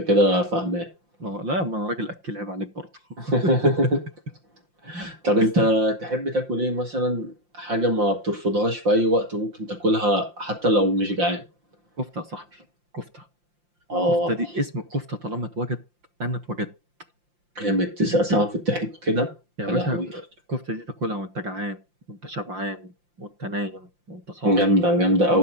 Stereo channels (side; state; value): left; late; 5.7 ms